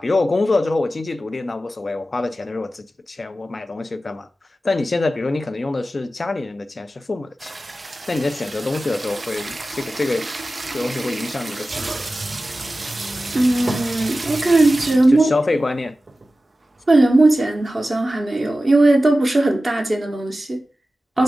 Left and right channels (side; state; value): both; normal; correlation 0.95